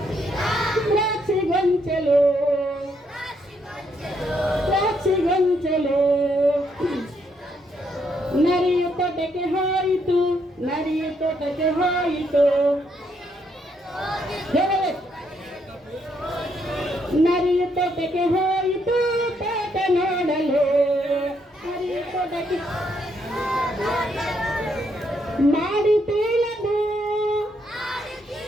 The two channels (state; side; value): normal; both; correlation 0.75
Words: ದ್ರಾಕ್ಷಿ ಗೊಂಚಲು, ದ್ರಾಕ್ಷಿ ಗೊಂಚಲು. ನರಿಯ ತೋಟಕ್ಕೆ ಹೋಯಿತು, ನರಿಯ ತೋಟಕ್ಕೆ ಹೋಯಿತು, ನರಿಯ ತೋಟಕ್ಕೆ ಹೋಯಿತು ತೋಟ ನೋಡಲು. ನರಿಯ ತೋಟಕ್ಕೆ ಮಾಡಿತೀನದು,